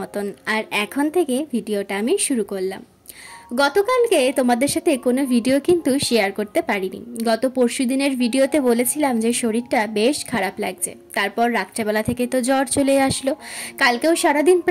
और एखन थेके भिडियोटा आमी शुरू करलाम। गतकालके तोमादेर साथे कोनो भिडियो किन्तु शेयर करते पारिनी। गत परशु दिनेर भिडियोते बोलेछिलाम जे शरीरटा बेश खाराप लागছে। तारपर रात्रेबेला थेके तो ज्वर चले आसलो। कालकेও सारादिन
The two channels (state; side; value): identical; both; correlation 1.00